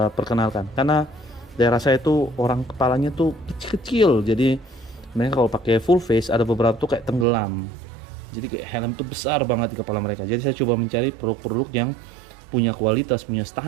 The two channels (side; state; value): left; drops out; at 7.2 s